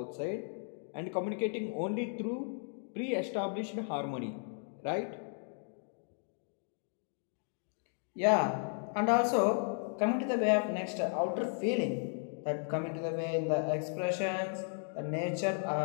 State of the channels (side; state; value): right; silent; 54 dB below the other